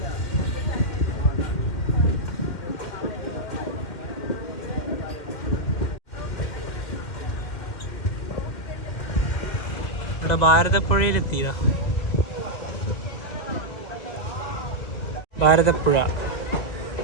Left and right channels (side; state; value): right; late; 1.9 ms